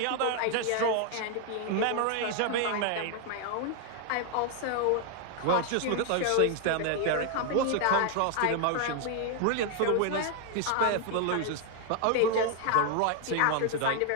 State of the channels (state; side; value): different; both; correlation 0.00